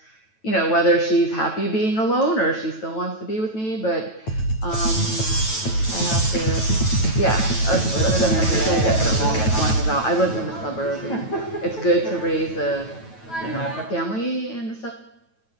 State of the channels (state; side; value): late; right; 9.1 ms